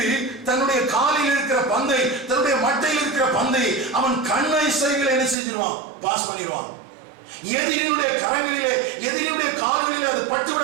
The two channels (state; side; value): drops out; left; at 5.4 s